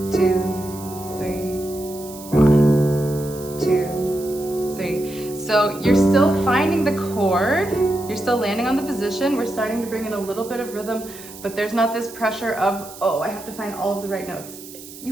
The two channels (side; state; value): right; noise; hiss, 16 dB below the sound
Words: position, we're starting to bring in a little bit of rhythm, but there's not this pressure of, oh, I have to find all of the right notes.